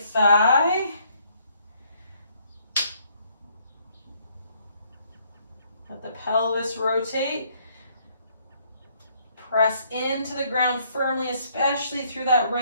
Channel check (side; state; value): both; inverted; correlation -0.67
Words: Let the pelvis rotate. Press into the ground firmly, especially through that